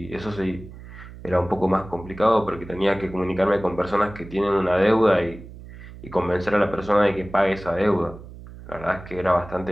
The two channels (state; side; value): noise; right; hum, 16 dB below the sound